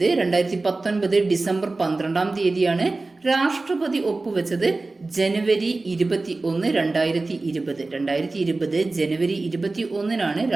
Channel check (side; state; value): left; quieter; 3.3 dB